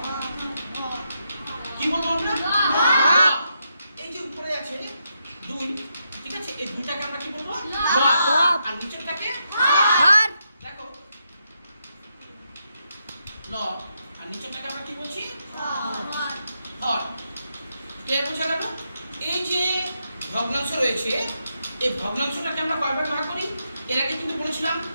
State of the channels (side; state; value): both; inverted; correlation -0.82